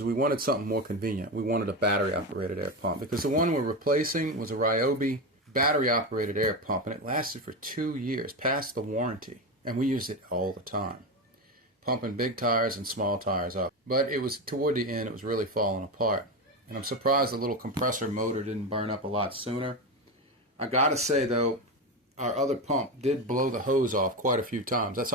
we wanted something more convenient. We wanted a battery-operated air pump because the one we're replacing was a Ryobi battery-operated air pump, and it lasted for 2 years, past the warranty. And we used it all the time, pumping big tires and small tires up. But it was toward the end, it was really falling apart. And I'm surprised the little compressor motor didn't burn up a lot sooner. I gotta say though, our other pump did blow the hose off quite a few times. That's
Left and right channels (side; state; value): both; normal; correlation 0.17